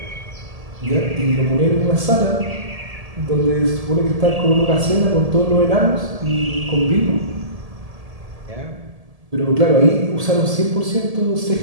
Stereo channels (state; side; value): late; left; 1.7 ms